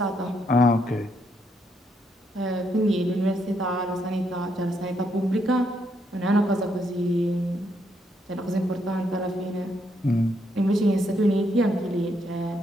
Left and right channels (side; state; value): both; normal; correlation 0.76